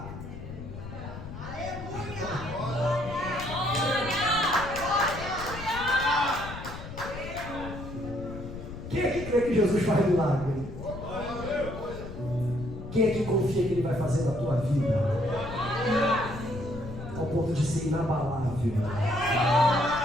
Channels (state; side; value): noise; left; rumble, 11 dB below the sound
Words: Aleluia! Quem é que crê que Jesus faz milagre? Quem é que confia que Ele vai fazer na tua vida? Ao ponto de ser inabalável.